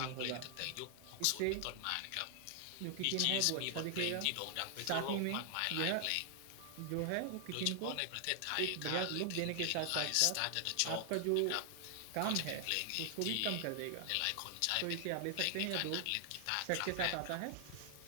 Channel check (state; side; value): different; both; correlation 0.00